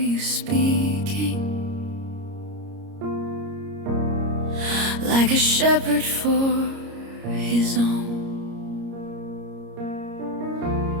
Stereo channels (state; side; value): late; left; 30 ms